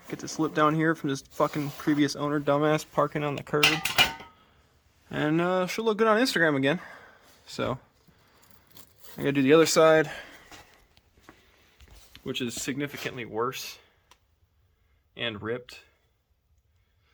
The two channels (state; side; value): identical; both; correlation 1.00